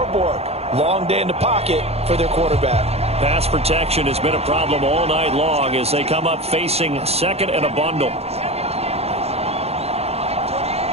Long day in the pocket for their quarterback. Pass protection has been a problem all night long as they come up facing second and a bundle.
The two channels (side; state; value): left; late; 0.30 ms